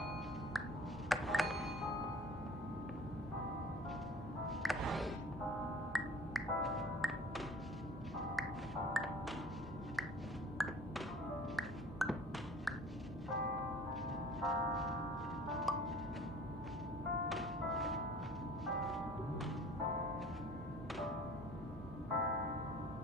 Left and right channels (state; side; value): normal; both; correlation 0.47